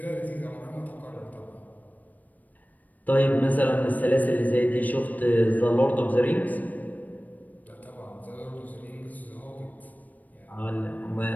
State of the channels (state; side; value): late; right; 0.079 ms